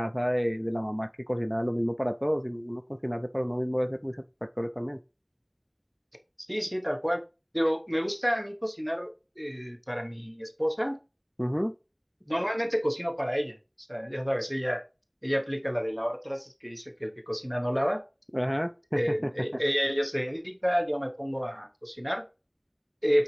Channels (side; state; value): both; identical; correlation 1.00